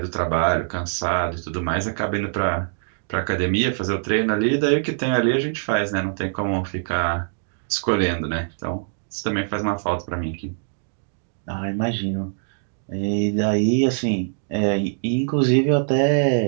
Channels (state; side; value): silent; left; digital silence